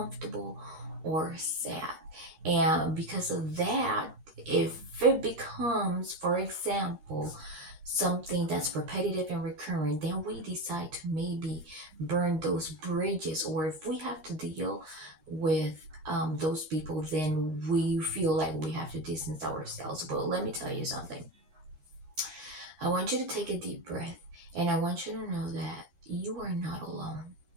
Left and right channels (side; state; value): left; late; 13 ms